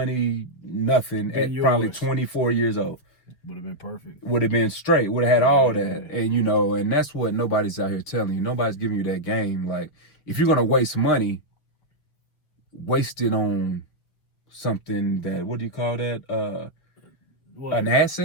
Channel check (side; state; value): right; late; 6.4 ms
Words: nothing, at probably 24 years old. Would have been perfect. Would have been straight. Would have had all that. And, and that's what nobody's out here telling you. Nobody's giving you that game. Like, if you're going to waste money, waste it on something that, what do you call that? An